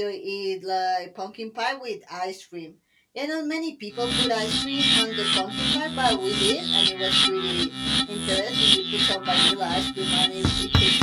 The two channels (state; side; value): identical; both; correlation 1.00